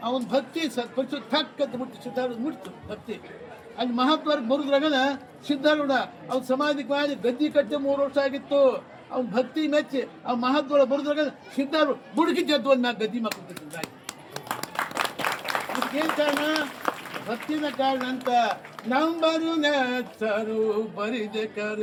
ಅವನ ಭಕ್ತಿ ಸತ್ಪರಿಸು ಥಕ್ಕಂತ ಮುಟ್ಟಿ ಸಿದ್ಧಾರೂಢ ಮುಟ್ತು ಭಕ್ತಿ ಅಲ್ಲಿ ಮಹಾತ್ಮರ ಮುರಿದ್ರಾಗನ ಸಿದ್ಧಾರೂಢ ಅವ್ನ ಸಮಾಧಿಗೆ ಮಾಡಿ ಗದ್ದಿ ಕಟ್ಟಿ 3 ವರ್ಷ ಆಗಿತ್ತು ಅವ್ನ ಭಕ್ತಿ ಮೆಚ್ಚಿ ಆ ಮಹಾತ್ಮರ ಮುರಿದ್ರಾಗ ಸಿದ್ಧಾರೂಢ ಬುಡುಕಿ ಜದ್ದು ಒಂದು ಗದ್ದಿ ಮಕ್ಕಳು ಏನ್ ಕಾರಣ ಭಕ್ತಿನ ಕಾರಣ ಅಂತ ನಂಬರು ನೆಚ್ಚರು ಬರಿದೆ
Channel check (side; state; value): both; identical; correlation 1.00